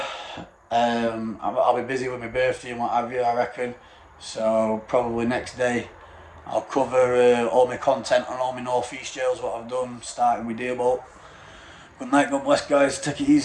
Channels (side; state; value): both; identical; correlation 1.00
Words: I'll be busy with my birthday and what have you, I reckon. So probably next day I'll cover all my content on all my North East jails, what I've done, starting with Dearbolt. Good night, God bless, guys. Take it